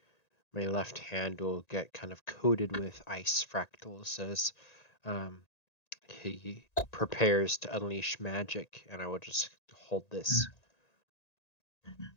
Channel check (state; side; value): late; right; 1.9 ms